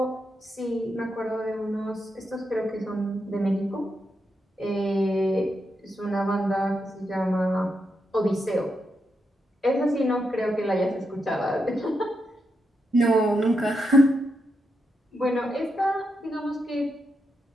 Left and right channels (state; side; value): normal; both; correlation 0.84